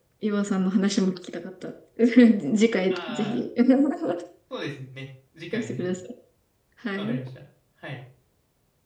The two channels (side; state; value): both; identical; correlation 1.00